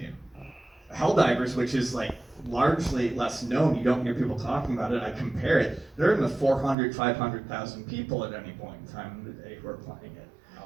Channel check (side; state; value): left; drops out; at 6.8 s